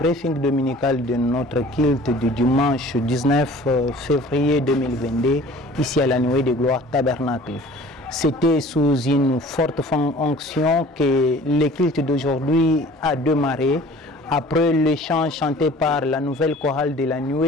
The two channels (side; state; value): both; normal; correlation 0.47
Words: dominical de notre culte du dimanche 19 février 2022 ici à la Nuée de Gloire Tabernacle. C'était sous une forte onction que le culte d'aujourd'hui a démarré. Après le chant chanté par la nouvelle chorale de la